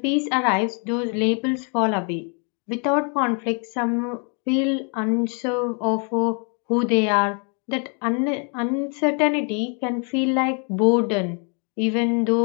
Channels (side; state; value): right; quieter; 38.7 dB